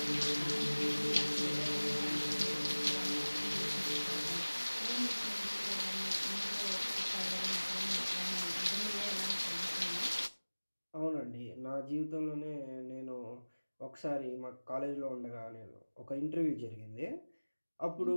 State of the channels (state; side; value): inverted; both; correlation -1.00